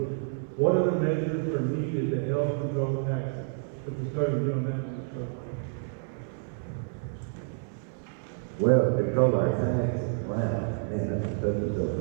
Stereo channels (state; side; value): silent; left; 59 dB below the other